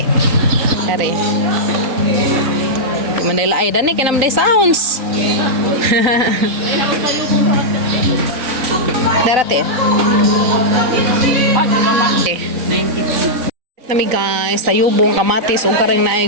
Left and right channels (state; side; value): late; left; 3.9 ms